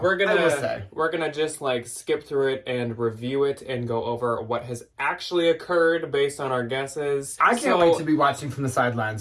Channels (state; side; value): identical; both; correlation 1.00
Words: I will say. gonna just like skip through it and review it and go over what has actually occurred based on our guesses. I can't wait to be watching from the sidelines